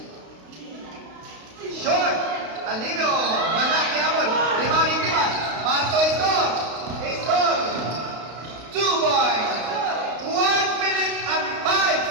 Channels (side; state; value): left; late; 32 ms